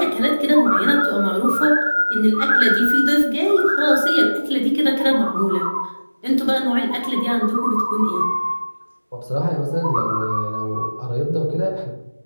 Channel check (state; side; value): inverted; both; correlation -1.00